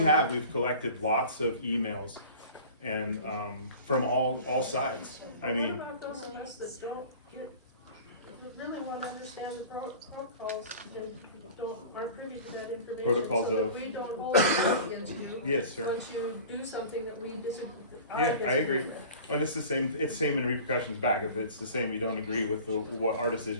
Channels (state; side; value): inverted; both; correlation -0.41